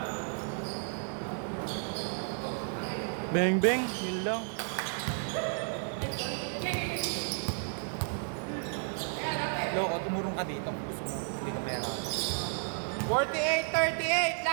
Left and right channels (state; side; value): silent; left; 56 dB below the other